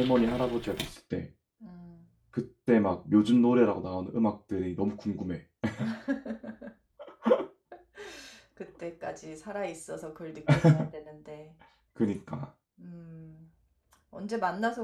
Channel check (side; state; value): both; identical; correlation 1.00